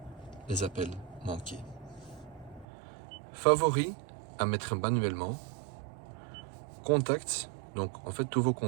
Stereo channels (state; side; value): drops out; left; at 2.7 s